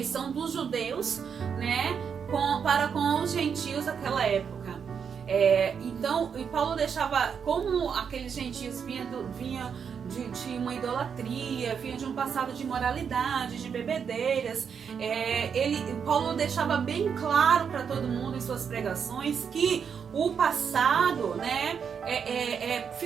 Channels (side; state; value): left; quieter; 6.9 dB